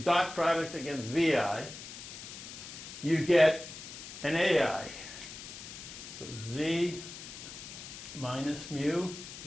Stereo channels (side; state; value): left; noise; hiss, 12 dB below the sound